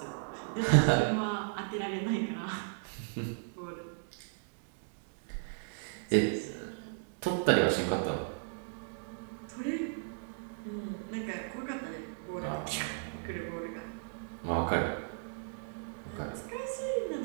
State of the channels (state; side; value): silent; left; digital silence